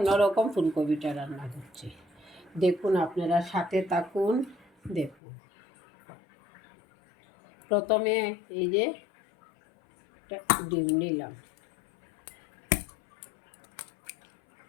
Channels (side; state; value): right; drops out; at 5.2 s